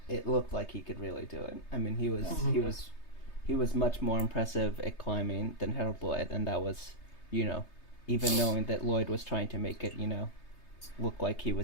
looked like he could really do it. I mean, he was much more impressive at climbing than Harold Lloyd, and that was, even knowing that Lloyd was trying to make it, look like he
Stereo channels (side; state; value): right; late; 3.3 ms